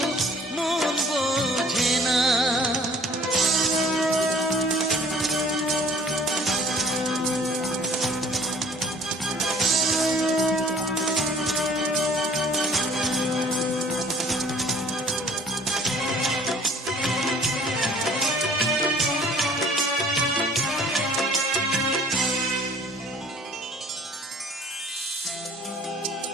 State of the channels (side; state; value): both; normal; correlation 0.53